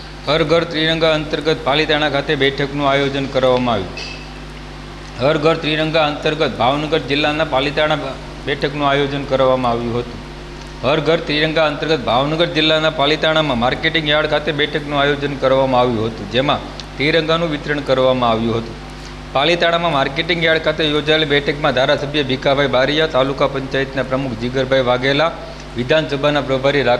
હર ઘર ત્રિરંગા અંતર્ગત પાલીતાણા ખાતે બેઠકનું આયોજન કરવામાં આવ્યું. હર ઘર ત્રિરંગા અંતર્ગત ભાવનગર જિલ્લાના પાલીતાણા બેઠકનું આયોજન કરવામાં આવ્યું હતું. હર ઘર ત્રિરંગા અંતર્ગત ભાવનગર જિલ્લાના પાલીતાણામાં માર્કેટિંગ યાર્ડ ખાતે બેઠકનું આયોજન કરવામાં આવ્યું હતું, જેમાં ત્રિરંગાનું વિતરણ કરવામાં આવ્યું હતું. પાલીતાણામાં માર્કેટિંગ યાર્ડ ખાતે યોજાયેલી બેઠકમાં ધારાસભ્ય ભીખાભાઈ બારિયા, તાલુકા પંચાયતના પ્રમુખ જીગરભાઈ વાઘેલા, વિધાનસભાના પ્રભારી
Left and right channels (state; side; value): identical; both; correlation 1.00